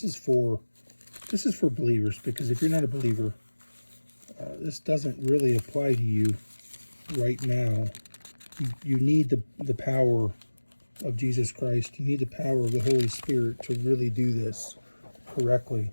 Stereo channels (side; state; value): both; inverted; correlation -1.00